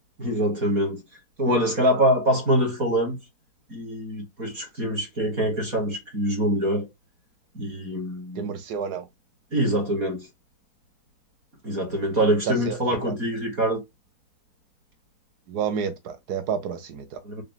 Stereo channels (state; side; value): late; left; 4.2 ms